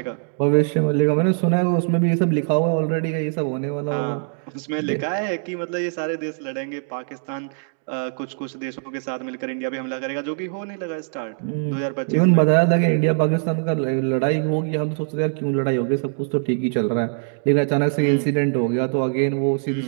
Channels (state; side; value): silent; left; 64 dB below the other